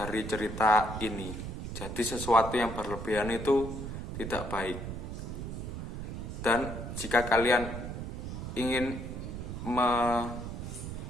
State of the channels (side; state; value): right; noise; rumble, 6 dB below the sound